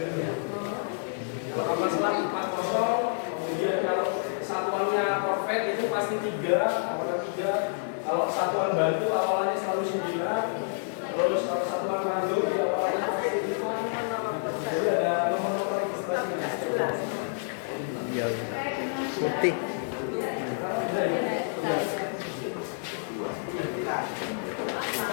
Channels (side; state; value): right; silent; 56 dB below the other